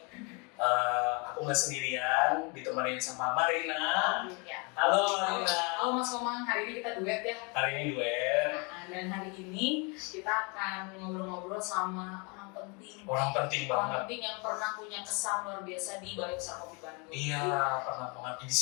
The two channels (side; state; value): right; quieter; 31.8 dB